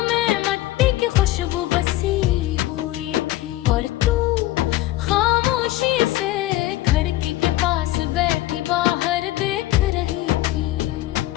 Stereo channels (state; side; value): quieter; right; 16.3 dB